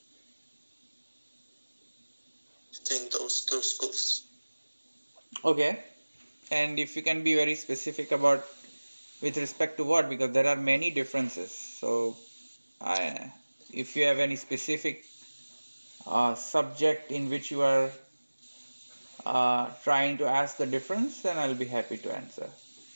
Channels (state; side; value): inverted; both; correlation -1.00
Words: between those two schools. Okay. And if you can be very specific about with respect to what, because there are many differences. So, if you have any specific subject in which you are trying to ask the difference, then I'll be happy to answer.